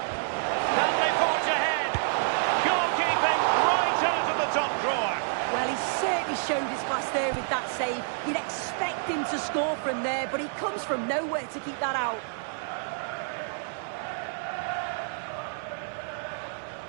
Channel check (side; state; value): left; silent; 58 dB below the other